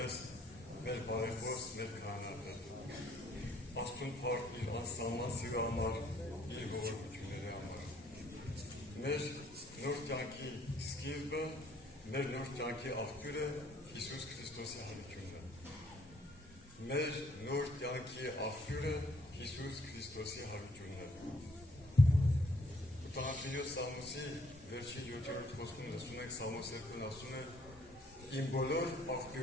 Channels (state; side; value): normal; both; correlation 0.64